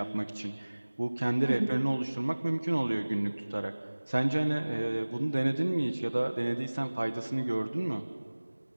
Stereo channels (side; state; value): both; inverted; correlation -1.00